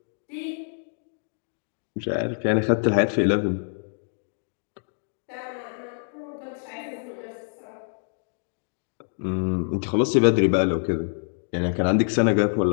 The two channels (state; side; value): silent; right; digital silence